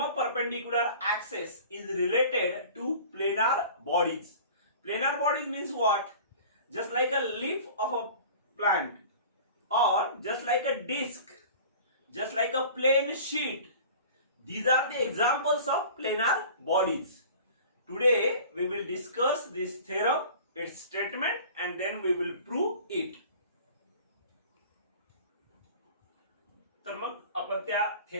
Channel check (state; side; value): inverted; both; correlation -0.42